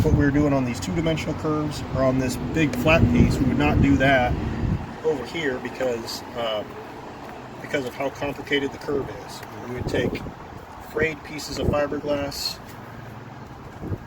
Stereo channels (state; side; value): identical; both; correlation 1.00